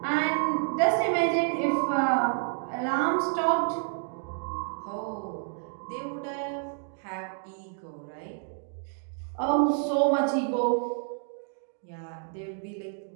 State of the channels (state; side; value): silent; left; 58 dB below the other